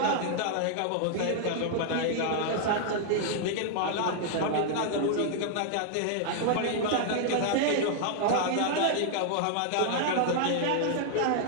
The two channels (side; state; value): both; different; correlation -0.01